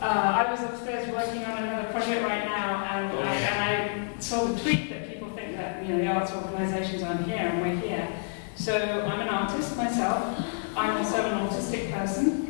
was upstairs working on another project right now, and I saw the tweet that people think that the arts organisations aren't here, and we're here. So I'm an artist myself. I'm also an autistic person.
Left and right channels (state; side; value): silent; right; 59 dB below the other